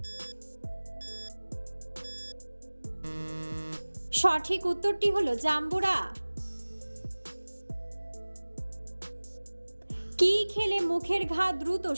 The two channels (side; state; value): both; inverted; correlation -1.00